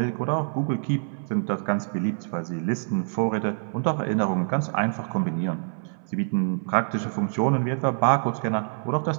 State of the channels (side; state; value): left; silent; 61 dB below the other